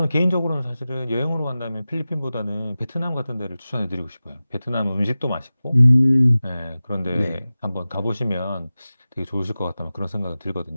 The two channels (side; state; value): both; inverted; correlation -0.96